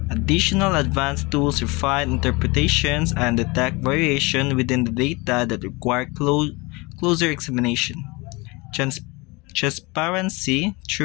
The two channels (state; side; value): quieter; right; 25.4 dB